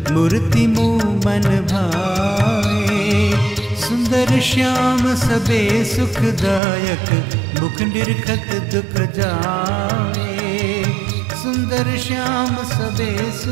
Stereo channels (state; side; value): drops out; left; at 6.6 s